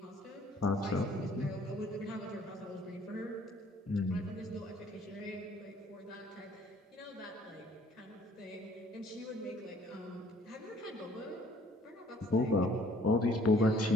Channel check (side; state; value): both; normal; correlation 0.59